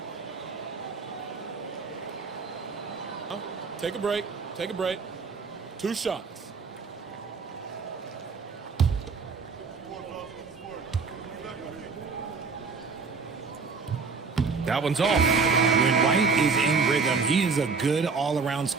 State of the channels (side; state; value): left; quieter; 4.8 dB